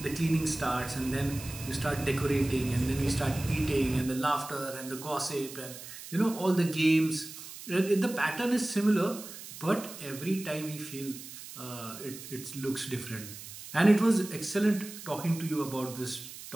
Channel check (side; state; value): right; noise; hiss, 13 dB below the sound